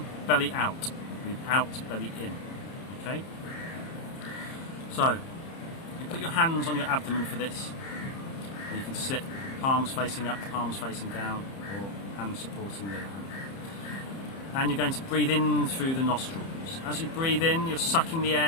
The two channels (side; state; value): right; late; 30 ms